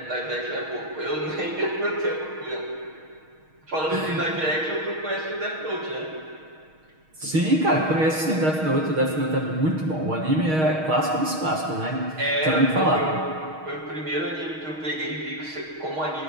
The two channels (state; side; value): late; left; 6.4 ms